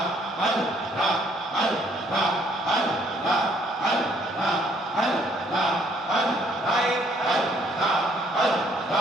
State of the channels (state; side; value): normal; both; correlation 0.65